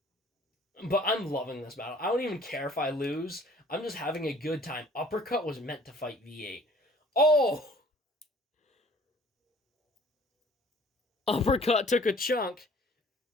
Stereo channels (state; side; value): normal; both; correlation 0.54